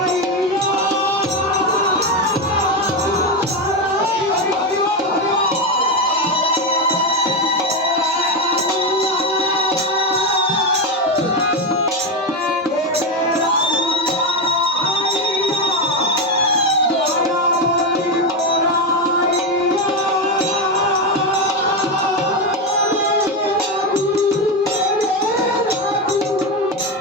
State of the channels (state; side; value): normal; both; correlation 0.12